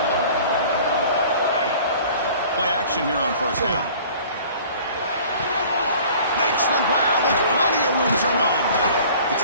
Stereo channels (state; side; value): inverted; both; correlation -0.48